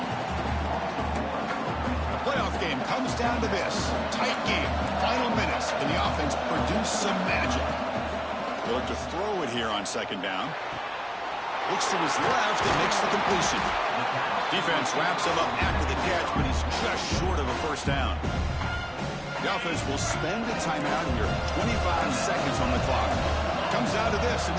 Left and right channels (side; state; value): both; identical; correlation 1.00